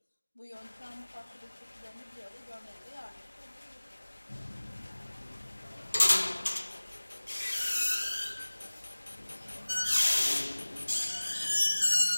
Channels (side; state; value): both; inverted; correlation -1.00